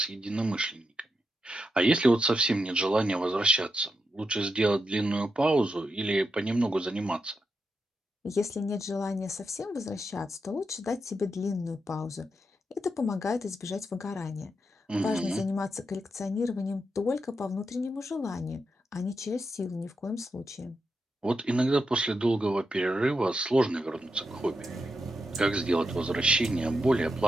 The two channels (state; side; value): normal; both; correlation 0.85